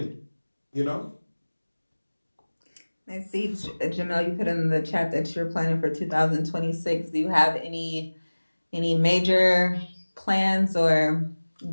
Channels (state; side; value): inverted; both; correlation -1.00